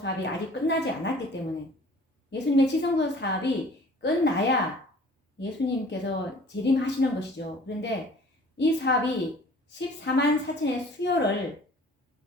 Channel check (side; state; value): both; normal; correlation 0.49